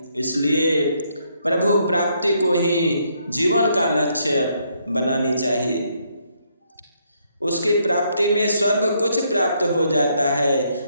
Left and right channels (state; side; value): inverted; both; correlation -0.73